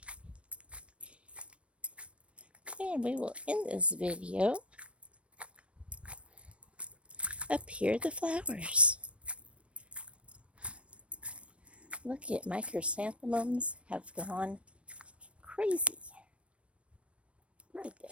And we will end this video. Up here, the flowers. Look at my chrysanthemums have gone crazy. Look at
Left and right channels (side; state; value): left; late; 0.061 ms